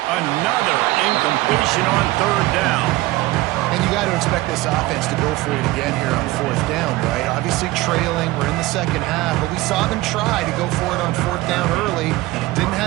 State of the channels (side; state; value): left; quieter; 19.1 dB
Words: Another incompletion on 3rd down. And you got to expect this offense to go for it again here on 4th down, right? Obviously trailing, we're in the second half, but we saw them try to go for it on 4th down early. Didn't